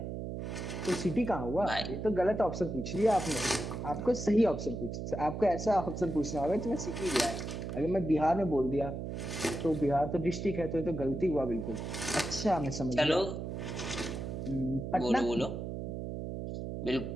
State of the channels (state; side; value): noise; right; hum, 5 dB below the sound